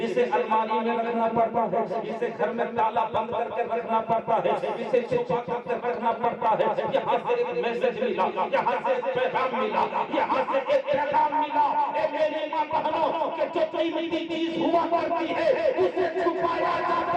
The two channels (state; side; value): identical; both; correlation 1.00